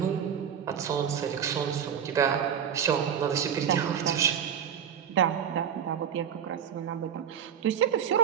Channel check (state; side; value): quieter; left; 8.4 dB